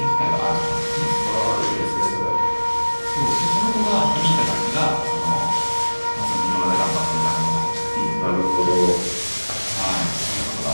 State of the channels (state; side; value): inverted; both; correlation -1.00